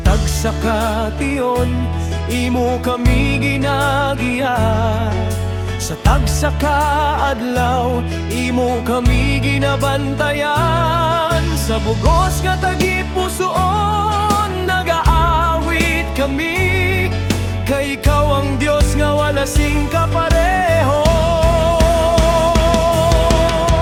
tagsakation imo kami ginagiya, sa tagsakaadlaw imo kami ginabantayan. Sa bugos nga tagipusoon nagaawit kami, kay ikaw ang Diyos nga wala sing kapareho.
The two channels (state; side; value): identical; both; correlation 1.00